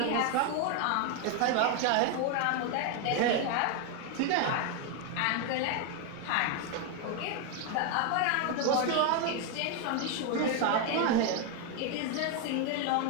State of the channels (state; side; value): different; both; correlation 0.01